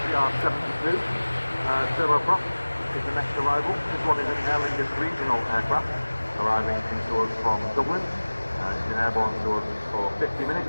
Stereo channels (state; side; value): inverted; both; correlation -1.00